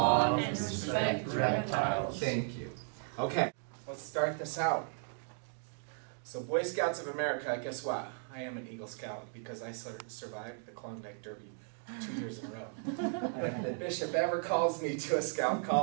and respect reptiles. Thank you. Okay, let's start this out. So Boy Scouts of America, guess what? I am an Eagle Scout because I survived the Klondike Derby 2 years in a row. And if the bishop ever calls me to a scout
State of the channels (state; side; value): silent; left; 54 dB below the other